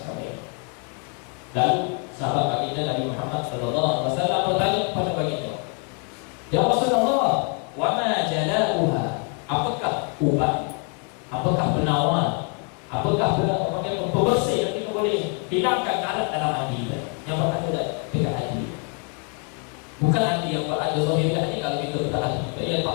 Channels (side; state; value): right; quieter; 39.9 dB